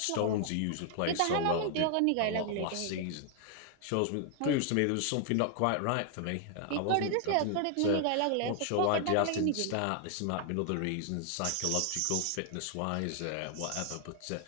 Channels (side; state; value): both; different; correlation 0.00